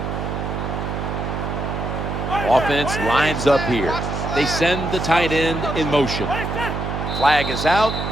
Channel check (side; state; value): right; noise; hum, 4 dB below the sound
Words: Offense lines up here. They send the tight end in motion. Flag is out.